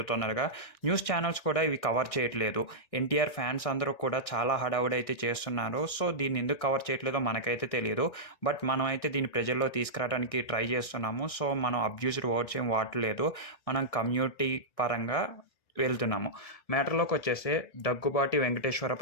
తొందరగా. న్యూస్ ఛానల్స్ కూడా ఇవి కవర్ చేయట్లేదు. ఎన్టీఆర్ ఫ్యాన్స్ అందరూ కూడా చాలా హడావుడైతే చేస్తున్నారు. సో దీన్ని ఎందుకు కవర్ చేయట్లేదో మనకైతే తెలియదు. బట్ మనమైతే దీన్ని ప్రజల్లో తీసుకురావడానికి ట్రై చేస్తున్నాము. సో మనం అబ్యూజ్డ్ వర్డ్స్ ఏం వాడట్లేదు. మనం కమ్యూనిటీ పరంగా వెళ్తున్నాము. మ్యాటర్‌లోకి వచ్చేస్తే దగ్గుబాటి వెంకటేశ్వర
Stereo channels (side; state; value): right; late; 1.6 ms